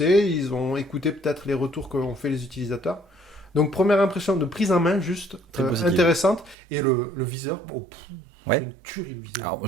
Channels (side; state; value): left; drops out; at 6.6 s